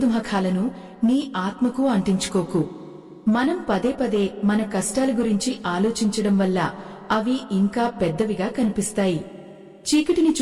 నీ ఆత్మకు అంటించుకోకు. మనం పదే పదే మన కష్టాల గురించి ఆలోచించడం వల్ల అవి ఇంకా పెద్దవిగా కనిపిస్తాయి. చీకటిని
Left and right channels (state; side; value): identical; both; correlation 1.00